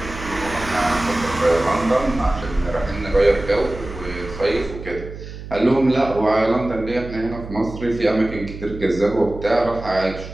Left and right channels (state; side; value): noise; right; hum, 12 dB below the sound